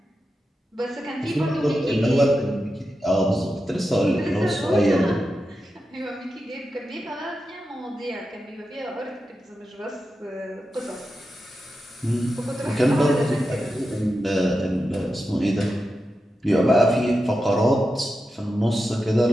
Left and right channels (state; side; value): normal; both; correlation 0.90